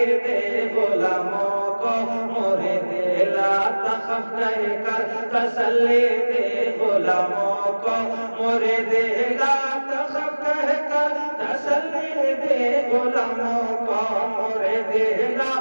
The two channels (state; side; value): inverted; both; correlation -1.00